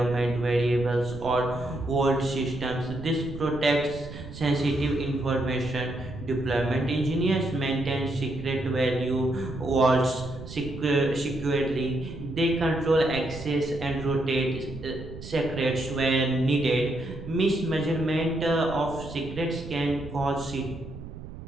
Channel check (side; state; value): right; noise; rumble, 12 dB below the sound